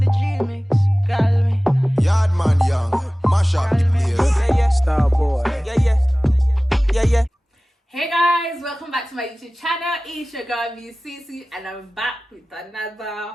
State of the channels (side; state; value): both; normal; correlation 0.97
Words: the G-mix? Call me. Yardman young, mash up the place. Yeah, yeah. Star boy. Yeah, yeah. Yeah, yeah. Hey guys, welcome back to my YouTube channel. It's your girl VCC and I'm back with